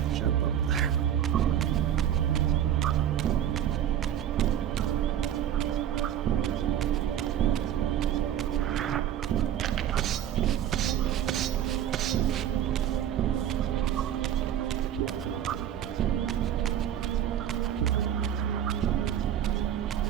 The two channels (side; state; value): left; quieter; 10.3 dB